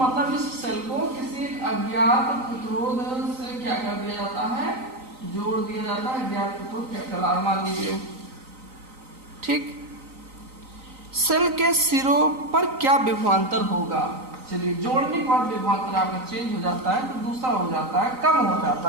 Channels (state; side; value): late; left; 3.9 ms